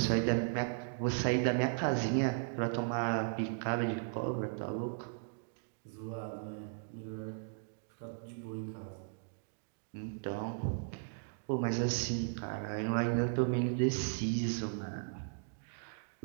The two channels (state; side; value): silent; left; digital silence